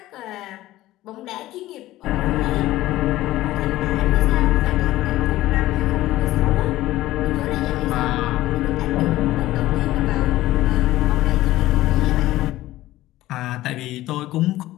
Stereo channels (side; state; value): right; quieter; 16.1 dB